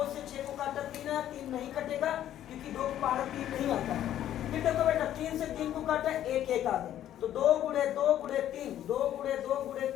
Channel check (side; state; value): right; quieter; 11.6 dB